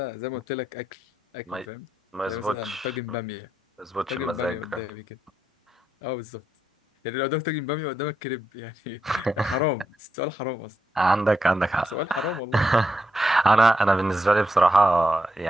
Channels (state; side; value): normal; both; correlation 0.82